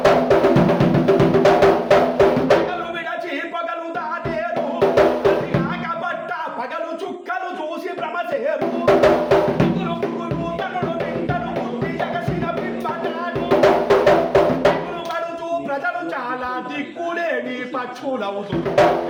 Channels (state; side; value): identical; both; correlation 1.00